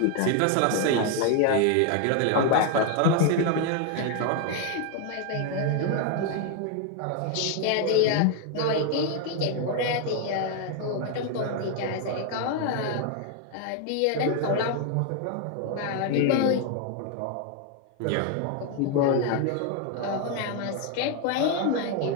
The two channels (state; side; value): different; both; correlation 0.01